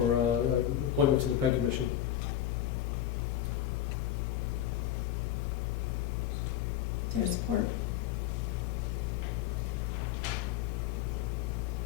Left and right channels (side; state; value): right; quieter; 11.4 dB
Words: appointment to the Peg Commission. Is there support?